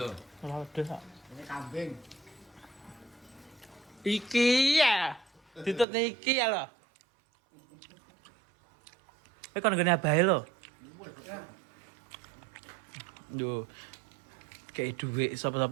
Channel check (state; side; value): drops out; left; at 5.9 s